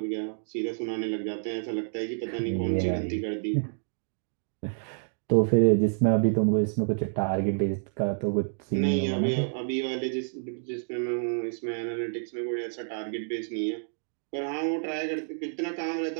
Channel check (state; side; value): silent; left; digital silence